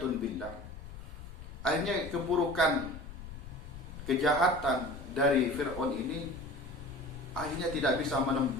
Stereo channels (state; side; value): noise; left; rumble, 13 dB below the sound